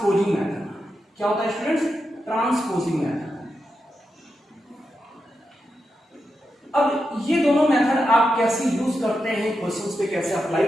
मेथड। क्या होता है स्टूडेंट्स? Transposing method. अब ये दोनों मेथड आप कैसे यूज करते हैं, क्वेश्चंस पे कैसे अप्लाई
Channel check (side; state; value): both; normal; correlation 0.87